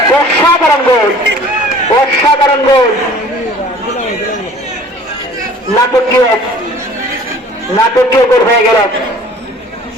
অসাধারণ গোল, অসাধারণ গোল। নাটকীয় নাটকীয় গোল হয়ে গেল।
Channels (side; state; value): both; normal; correlation 0.49